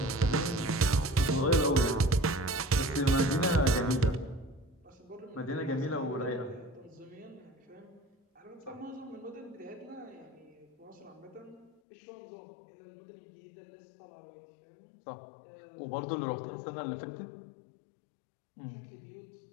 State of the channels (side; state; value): right; drops out; at 11.8 s